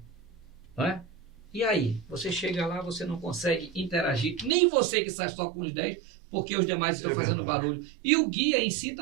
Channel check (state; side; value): drops out; left; at 4.5 s